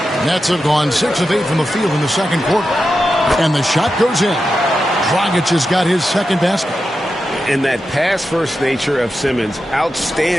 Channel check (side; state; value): both; normal; correlation 0.90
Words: Nets have gone 6 of 8 from the field in the second quarter. And the shot goes in. Dragic has got his second basket. And that pass-first nature of Simmons,